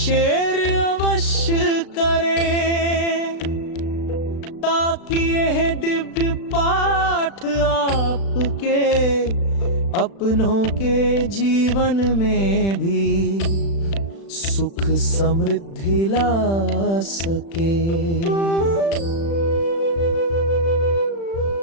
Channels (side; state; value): right; late; 36 ms